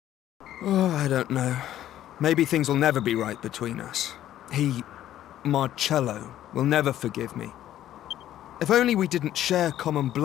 Oh, I don't know. Maybe things will never be right between us. Marcello, will never forgive me. If only we didn't share common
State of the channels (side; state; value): right; quieter; 12.4 dB